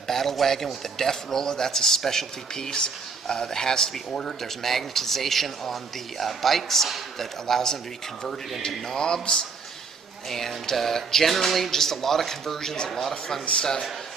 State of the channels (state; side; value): quieter; left; 5.1 dB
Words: battle wagon with a death roller. That's a specialty piece that has to be ordered. There's magnetization on the bikes that allows them to be converted into knobs. And generally, just a lot of conversions, a lot of fun stuff.